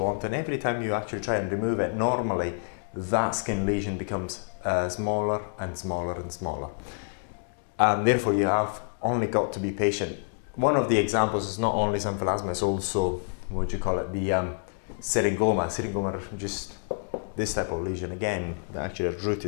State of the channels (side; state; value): right; silent; digital silence